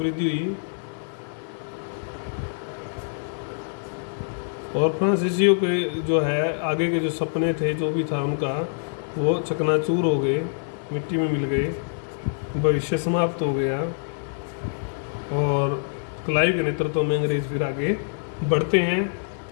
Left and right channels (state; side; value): silent; right; 62 dB below the other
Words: हुई और फ्रांसीसियों के जो है आगे के जो सपने थे, जो भी था उनका, वो चकनाचूर हो गए, मिट्टी में मिल गए, भविष्य समाप्त हो गया। और क्लाइव के नेतृत्व में अंग्रेज फिर आगे बढ़ते हैं।